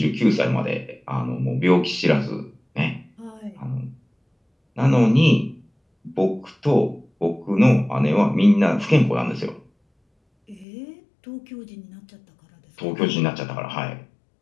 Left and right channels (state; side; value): drops out; right; at 10.7 s